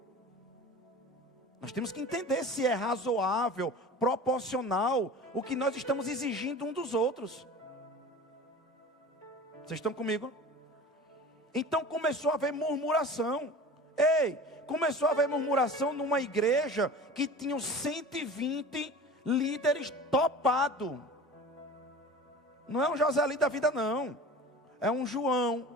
Nós temos que entender se é razoável, proporcional o que nós estamos exigindo um dos outros. Vocês estão comigo? Então começou a haver murmuração. Começou a haver murmuração numa igreja que tinha 120 líderes topados. Não é um Joselito da vida, não. É um João,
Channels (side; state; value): both; normal; correlation 0.38